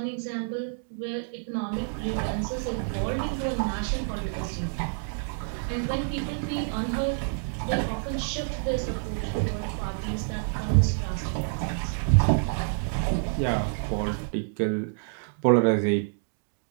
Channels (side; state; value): left; silent; digital silence